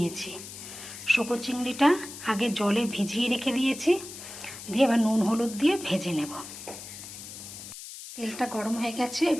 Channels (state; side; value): noise; left; hiss, 12 dB below the sound